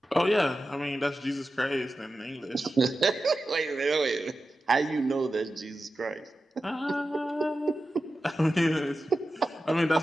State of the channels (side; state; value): both; normal; correlation 0.93